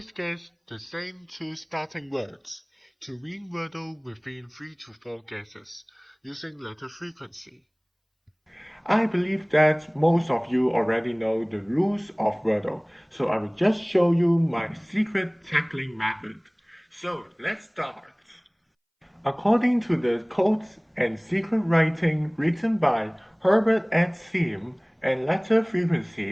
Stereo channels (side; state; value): both; identical; correlation 1.00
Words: guess the same two starting words to win Wordle within 3 to 4 guesses using letter frequency. I believe that most of you already know the rules of Wordle, so I will just show you my secret tackling method. So let's start. According to the codes and secret writing written by Herbert at Sim and letter frequency